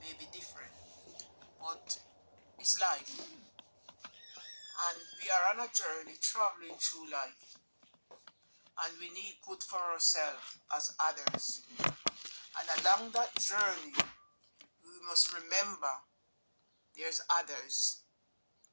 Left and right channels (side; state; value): both; inverted; correlation -1.00